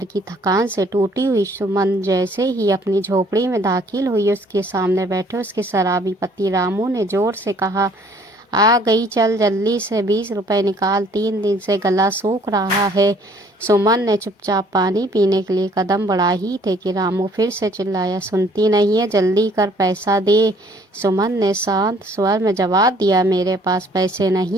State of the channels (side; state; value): both; normal; correlation 0.59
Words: की थकान से टूटी हुई सुमन जैसे ही अपनी झोपड़ी में दाखिल हुई, उसके सामने बैठे उसके शराबी पति रामू ने जोर से कहा, आ गई, चल जल्दी से 20 रुपए निकाल, 3 दिन से गला सूख रहा है। सुमन ने चुपचाप पानी पीने के लिए कदम बढ़ा ही थे कि रामू फिर से चिल्लाया, सुनती नहीं है, जल्दी कर, पैसा दे। सुमन ने शांत स्वर में जवाब दिया, मेरे पास पैसे